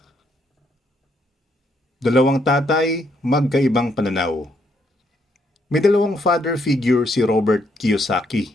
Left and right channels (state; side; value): normal; both; correlation 0.73